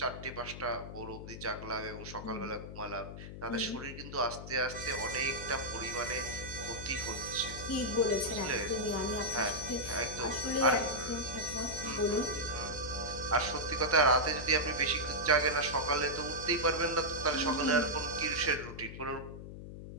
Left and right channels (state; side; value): noise; left; hum, 11 dB below the sound